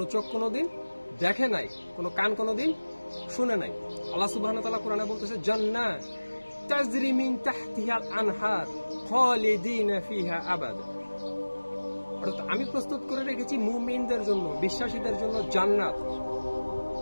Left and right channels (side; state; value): both; inverted; correlation -1.00